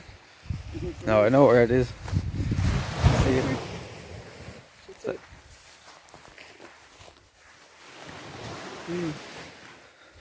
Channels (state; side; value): identical; both; correlation 1.00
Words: No, I know where it is. See it. So,